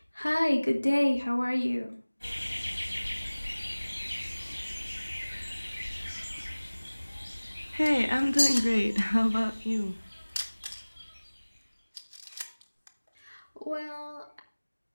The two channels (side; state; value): both; inverted; correlation -1.00